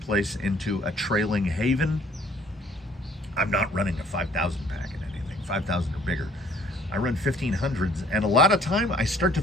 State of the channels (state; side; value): normal; both; correlation 0.58